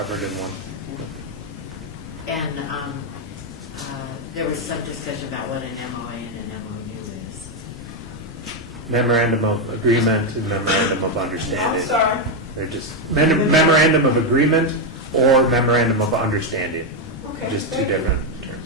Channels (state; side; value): normal; both; correlation 0.04